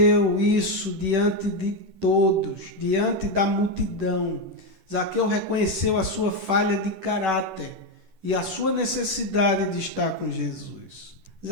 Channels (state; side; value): late; left; 10 ms